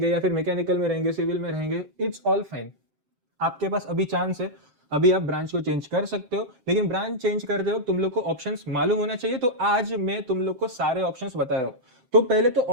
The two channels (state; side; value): late; left; 7.8 ms